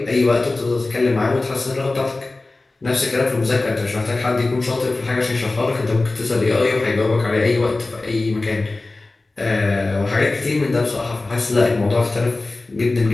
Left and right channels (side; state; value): right; quieter; 3.2 dB